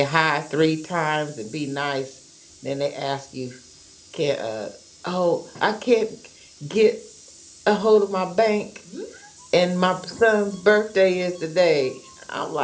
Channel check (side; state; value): both; identical; correlation 1.00